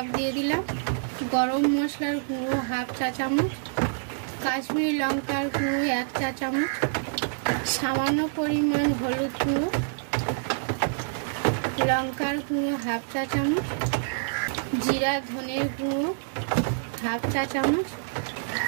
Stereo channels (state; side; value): silent; left; 58 dB below the other